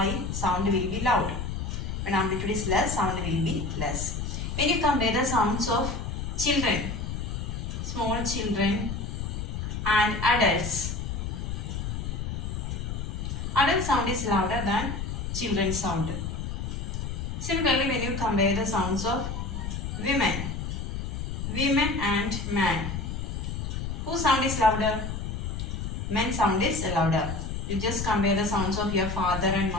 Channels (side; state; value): left; noise; rumble, 4 dB below the sound